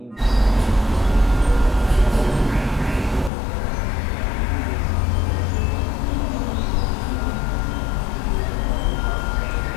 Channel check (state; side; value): drops out; right; at 3.3 s